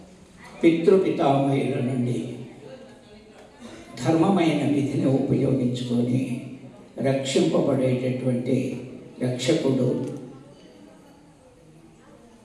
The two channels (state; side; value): identical; both; correlation 1.00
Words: పితృపితామహుల నుండి ధర్మమైన విధిని ఉపయోగించుకొని రక్షింపబడేటటువంటి రక్షకుడు